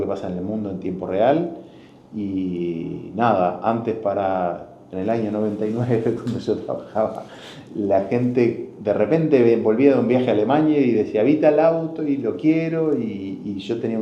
pasa en el mundo en tiempo real. Y nada, antes en el año 99, cuando yo trabajaba, la gente de repente volvía de un viaje a Alemania y decía, vi tal auto y lo quiero, y yo tenía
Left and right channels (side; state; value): both; identical; correlation 1.00